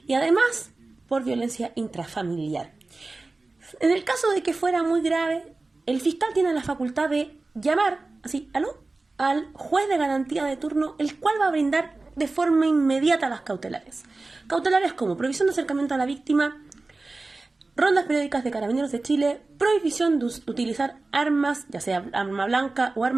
y además por violencia intrafamiliar. En el caso de que fuera muy grave, el fiscal tiene la facultad de llamar, así, al juez de garantía de turno, el cual va a brindar de forma inmediata las cautelares. Cautelares como prohibición de acercamiento a la víctima, rondas periódicas de Carabineros de Chile, prohibición de utilizar armas, ya sea arma blanca o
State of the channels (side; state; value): left; quieter; 3.4 dB